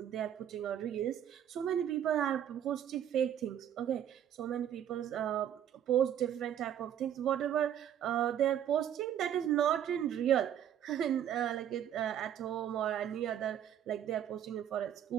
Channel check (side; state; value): left; quieter; 10.1 dB